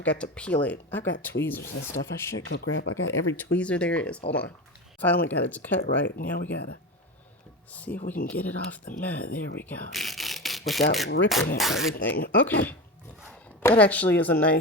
got to peel it. I've got tweezers and stuff. I should go grab. I got every tweezer there is. Hold on. Finally got it to cut right. Now we gotta see if we can get it off the mat. There we go. Without ripping it, everything. Okay. That actually is a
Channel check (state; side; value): normal; both; correlation 0.23